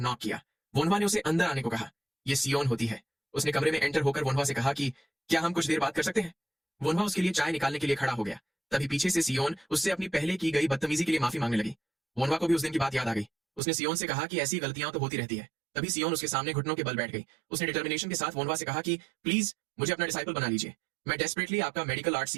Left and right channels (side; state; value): left; drops out; at 13.6 s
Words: किया। वोनवा ने उसे अंदर आने को कहा। ये सियोन होती है। उसने कमरे में एंटर होकर वोनवा से कहा कि क्या हम कुछ देर बात कर सकते हैं। वोनवा उसके लिए चाय निकालने के लिए खड़ा हो गया। तभी पीछे से सियोन उससे अपनी पहले की गई बदतमीजी के लिए माफी मांगने लगी। वोनवा को भी उस दिन की बात याद आ गई। उसने सियोन से कहा कि ऐसी गलतियां तो होती रहती है। तभी सियोन उसके सामने घुटनों के बल बैठ गई। उसने डिटर्मिनेशन के साथ वोनवा से कहा कि प्लीज मुझे अपना डिसाइपल बना लीजिए, मैं डेस्परेटली आपका मेडिकल आर्ट